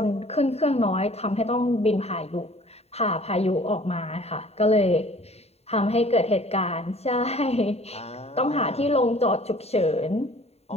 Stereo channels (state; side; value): late; right; 0.30 ms